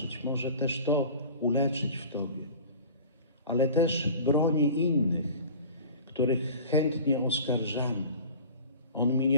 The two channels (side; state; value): both; inverted; correlation -0.40